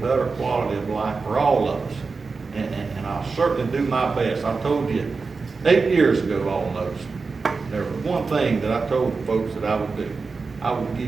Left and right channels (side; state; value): left; quieter; 4.4 dB